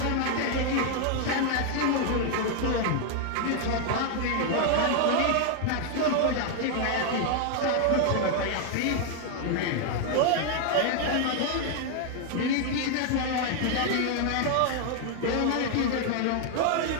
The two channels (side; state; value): both; different; correlation 0.00